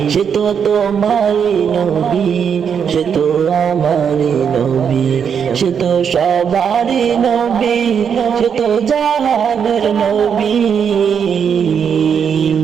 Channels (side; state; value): left; quieter; 7.3 dB